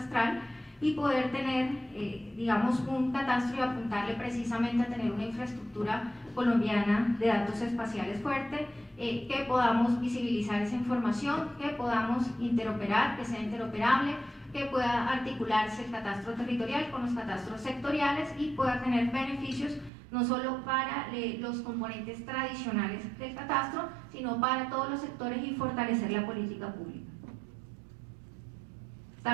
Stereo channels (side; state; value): left; drops out; at 19.9 s